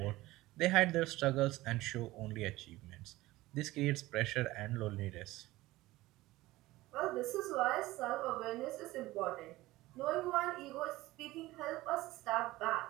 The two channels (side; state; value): left; quieter; 18.2 dB